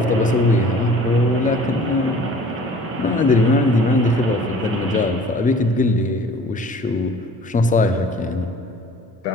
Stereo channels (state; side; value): normal; both; correlation 0.49